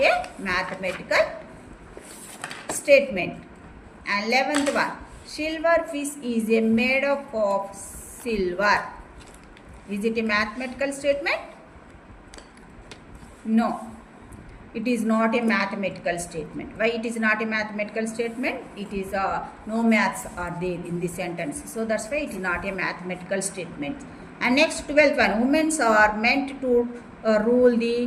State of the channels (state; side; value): identical; both; correlation 1.00